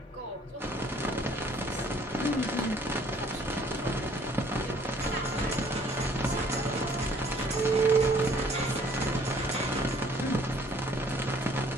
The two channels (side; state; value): both; normal; correlation 0.59